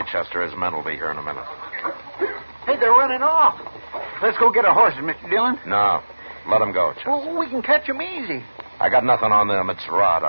Chester. His men will be here in a minute. Hey, they're running off. Let's go get our horses, Mr. Dillon. No. Let them go, Chester. Well, we can catch them easy. I got nothing on them. It's Rod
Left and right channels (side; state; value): both; inverted; correlation -1.00